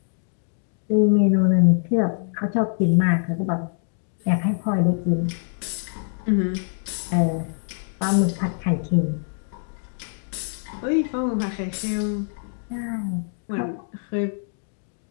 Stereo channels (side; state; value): right; silent; 62 dB below the other